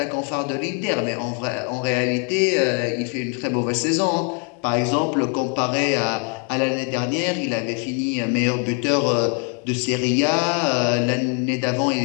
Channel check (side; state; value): right; quieter; 39.2 dB